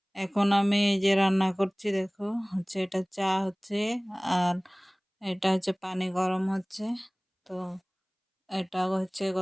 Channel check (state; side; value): identical; both; correlation 1.00